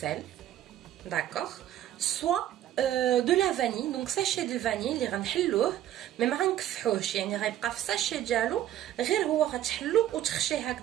d'accord, soit de la vanille, donc sachet de vanille اللي غنحلوه مي ما غنكفحوهش يعني غيبقى في الساشي ديالو غير هو غتحلو وتخشيه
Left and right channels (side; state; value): left; quieter; 12.2 dB